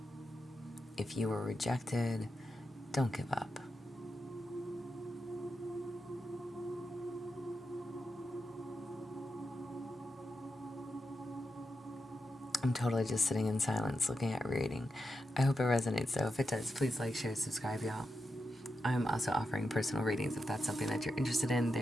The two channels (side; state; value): both; normal; correlation 0.87